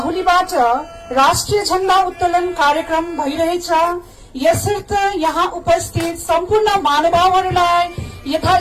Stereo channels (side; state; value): both; identical; correlation 1.00